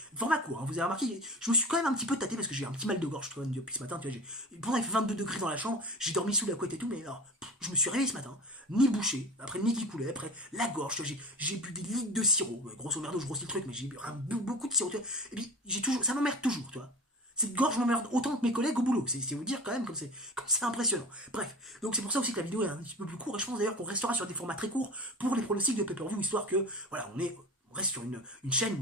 format court, hein, vous avez remarqué, je me suis quand même un petit peu tâté parce que j'ai un petit mal de gorge depuis ce matin, tu vois, pourtant il fait 22 degrés dans la chambre, j'ai dormi sous la couette et tout, mais alors, je me suis réveillé ce matin, ni bouché, après le nez qui coulait, après la gorge, tu vois, j'ai bu des litres de sirop, grosso merdo, je grossis le truc, mais j'ai bu beaucoup de sirop, tu vois, et puis ça m'emmerde toujours, tu vois. Cette gorge m'emmerde autant que mes collègues au boulot. C'est vous dire quand même comme c'est impressionnant. Bref, donc c'est pour ça aussi que la vidéo est un petit peu plus courte. Et je pense d'ailleurs qu'on restera sur des formats très courts pour les pronostics de pay-per-view, histoire que, voilà, on reste sur une chaîne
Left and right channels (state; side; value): normal; both; correlation 0.34